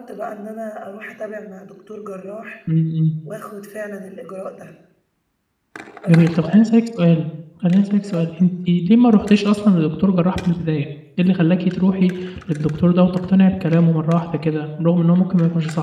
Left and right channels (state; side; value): identical; both; correlation 1.00